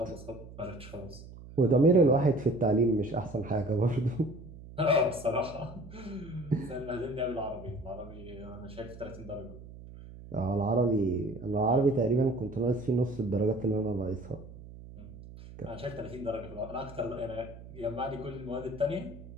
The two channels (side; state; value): right; noise; hum, 16 dB below the sound